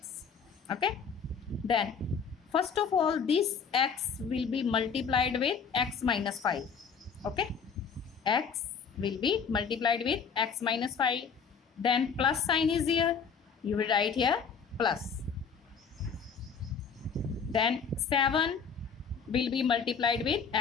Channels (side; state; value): right; quieter; 6.2 dB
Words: Okay, then first of all this x will be multiplied with x minus 5. Okay, x will be multiplied with x minus 5, then plus sign is here, you will write here plus, then 7 will be multiplied with